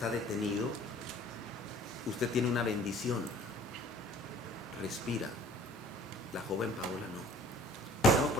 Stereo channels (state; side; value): normal; both; correlation 0.51